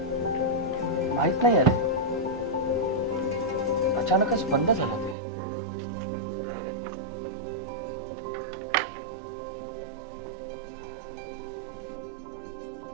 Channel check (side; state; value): left; drops out; at 5.2 s